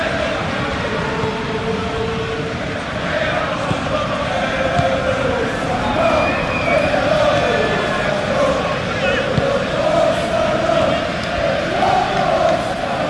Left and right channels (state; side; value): identical; both; correlation 1.00